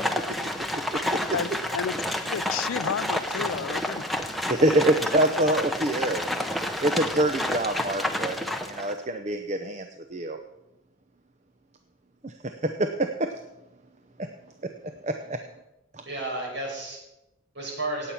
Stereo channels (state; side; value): normal; both; correlation 0.34